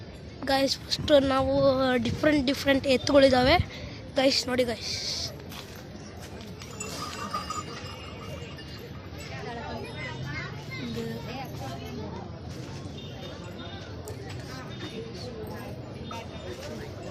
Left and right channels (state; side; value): identical; both; correlation 1.00